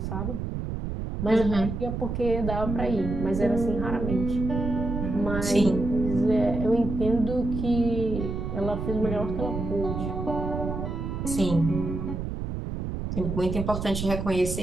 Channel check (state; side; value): noise; right; rumble, 4 dB below the sound